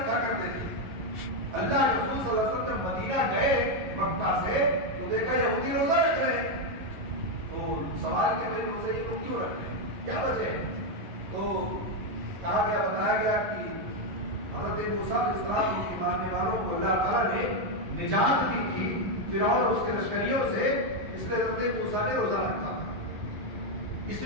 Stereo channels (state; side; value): late; left; 11 ms